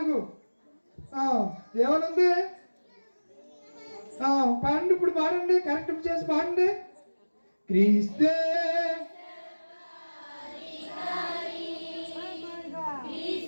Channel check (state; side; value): inverted; both; correlation -1.00